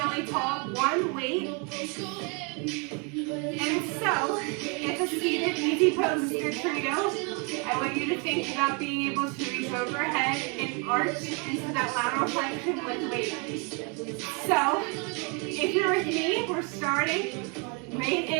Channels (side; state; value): left; quieter; 33.6 dB